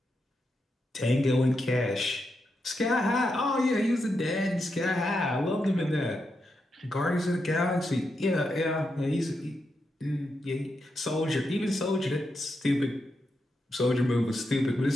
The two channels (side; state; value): both; normal; correlation 0.85